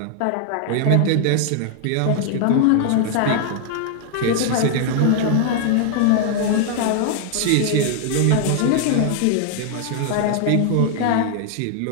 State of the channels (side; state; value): both; different; correlation 0.00